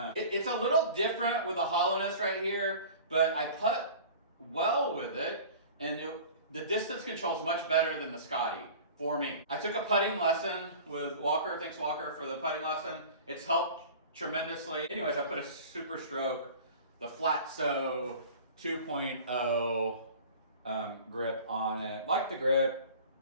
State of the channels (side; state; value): both; inverted; correlation -0.41